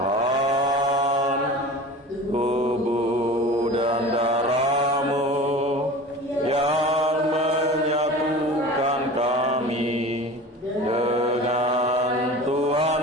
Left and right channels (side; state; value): both; normal; correlation 0.36